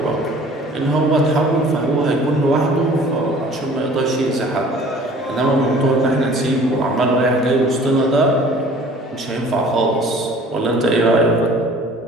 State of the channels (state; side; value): normal; both; correlation 0.49